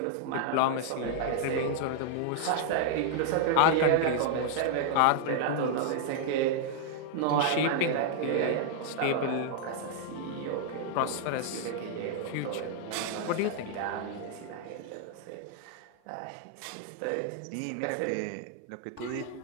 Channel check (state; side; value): different; both; correlation -0.01